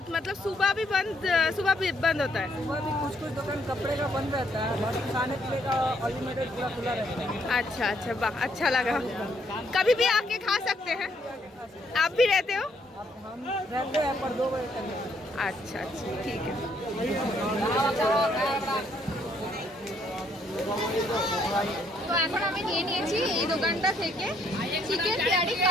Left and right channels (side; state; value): both; normal; correlation 0.70